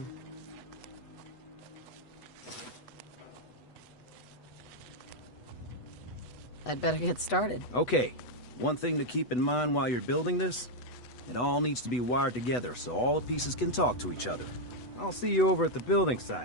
I'd better get started. Okay. One thing to keep in mind while you're building this, it all needs to be wired together so all the pieces can talk to each other. I'll see you over at the building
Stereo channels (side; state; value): right; late; 8.1 ms